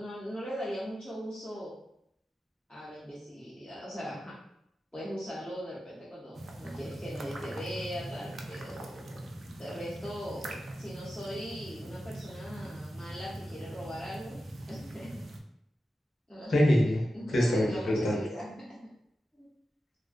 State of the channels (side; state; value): both; normal; correlation 0.92